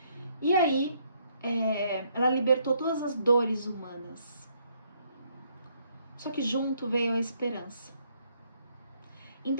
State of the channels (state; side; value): inverted; both; correlation -0.70